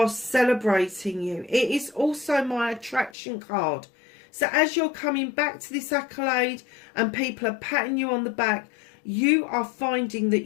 celebrating you. It is also my attraction card. So as you're coming back to this accolade and people are patting you on the back, you are finding that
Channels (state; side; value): drops out; right; at 3.2 s